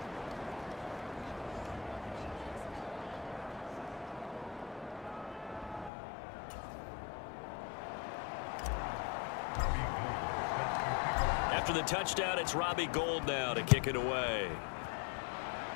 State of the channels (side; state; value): right; drops out; at 5.9 s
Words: After the touchdown, it's Robbie Gould now to kick it away.